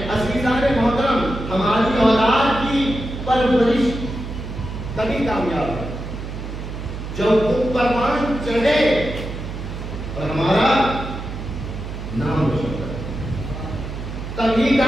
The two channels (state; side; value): noise; right; hum, 8 dB below the sound